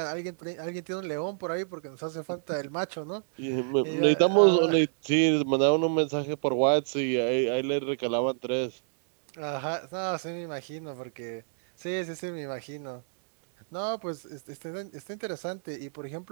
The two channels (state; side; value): silent; left; digital silence